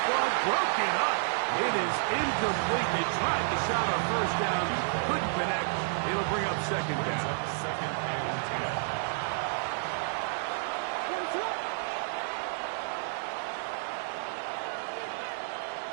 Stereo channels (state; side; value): silent; left; digital silence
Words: ball broken up. It is incomplete. They tried to shot on first down. Couldn't connect. It'll bring up second down. Second and 10.